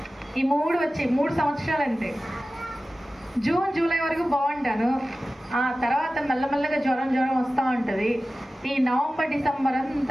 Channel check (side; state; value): both; normal; correlation 0.95